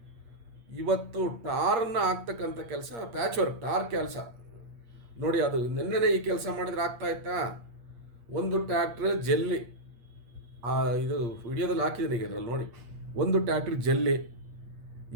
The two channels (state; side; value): late; left; 8.5 ms